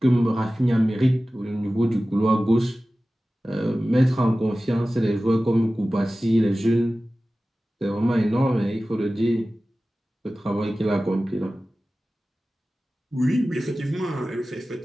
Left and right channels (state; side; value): normal; both; correlation 0.96